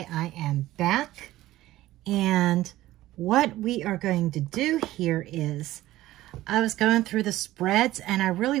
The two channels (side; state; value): left; quieter; 15.8 dB